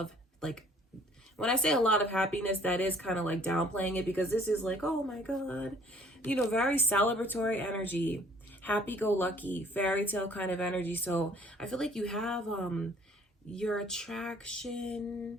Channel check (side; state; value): both; normal; correlation 0.58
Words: like, when I say a lot of happiness, that is kind of like downplaying it because this is like, oh my God, you know, very celebratory energy, happy-go-lucky, fairy tale kind of energy. So I feel like you have your